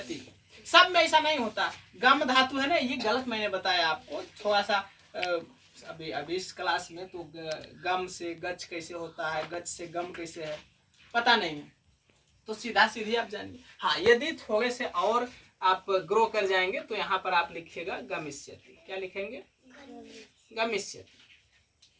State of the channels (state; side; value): identical; both; correlation 1.00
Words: सब में ऐसा नहीं होता। गम धातु है ना, ये गलत मैंने बताया आपको थोड़ा सा। अभी इस क्लास में तो गम से गच कैसे होता है, गच से गम कैसे है, पता नहीं है। तो सीधा सीधी आप जानिए। हाँ, यदि थोड़े से और आप ग्रो कर जाएंगे तो यहाँ पर आप लिखिएगा गमिष्यति। क्या लिखेंगे? गमिष्यति,